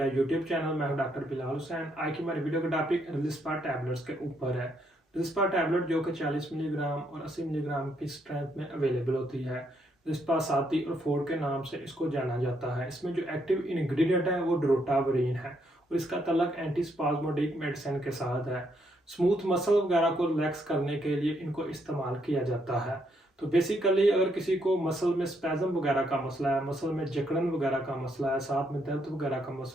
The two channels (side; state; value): both; normal; correlation 0.74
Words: यूट्यूब चैनल। मैं हूं डॉक्टर बिलाल हुसैन। आज की हमारी वीडियो का टॉपिक रिलिस्पा टैबलेट्स के ऊपर है। रिलिस्पा टैबलेट जो कि 40 मिलीग्राम और 80 मिलीग्राम की स्ट्रेंथ में अवेलेबल होती है। रिलिस्पा साती और फोर्ड के नाम से इसको जाना जाता है। इसमें जो एक्टिव इंग्रेडिएंट है वो ड्रोटावरीन है और इसका तल्लक एंटीस्पाज्मोडिक मेडिसिन के साथ है। स्मूथ मसल वगैरह को रिलैक्स करने के लिए इनको इस्तेमाल किया जाता है। तो बेसिकली अगर किसी को मसल में स्पैज़म वगैरह का मसला है, मसल में जकड़न वगैरह का मसला है, साथ में दर्द वगैरह का